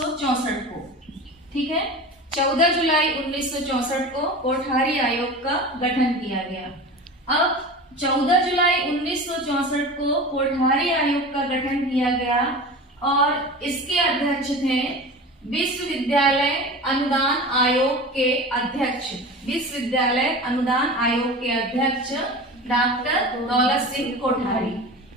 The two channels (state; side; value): normal; both; correlation 0.33